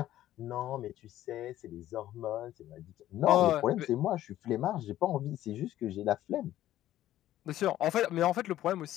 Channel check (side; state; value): right; quieter; 13.4 dB